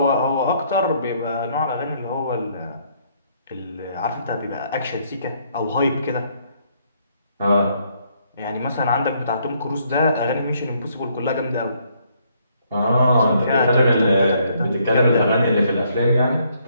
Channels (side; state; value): both; inverted; correlation -0.69